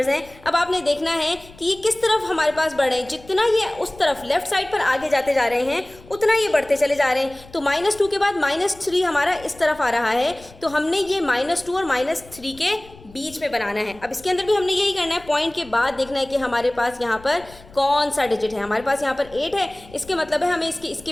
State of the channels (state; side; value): noise; left; rumble, 22 dB below the sound